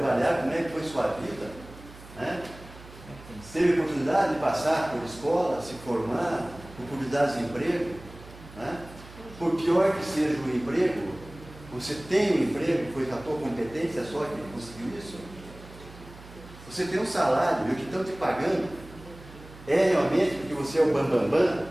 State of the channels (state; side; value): noise; right; hum, 18 dB below the sound